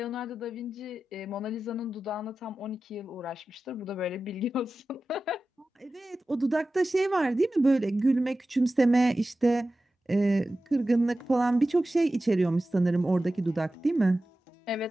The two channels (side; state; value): both; normal; correlation 0.94